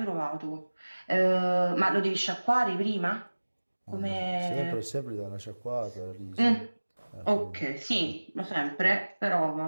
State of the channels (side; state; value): both; inverted; correlation -1.00